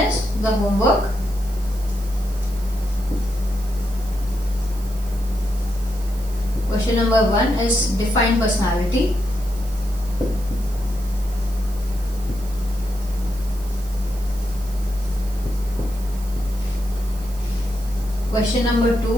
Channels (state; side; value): noise; right; hiss, 19 dB below the sound